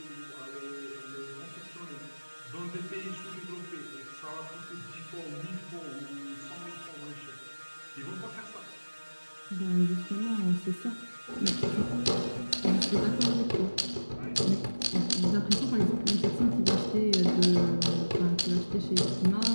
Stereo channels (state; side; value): inverted; both; correlation -1.00